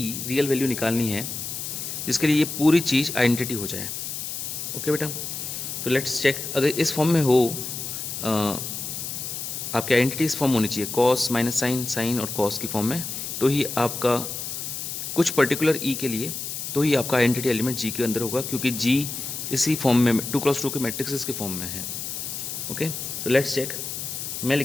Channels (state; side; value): noise; left; hiss, 6 dB below the sound